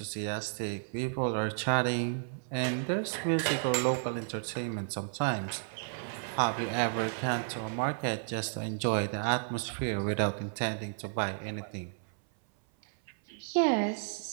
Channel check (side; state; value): left; silent; 56 dB below the other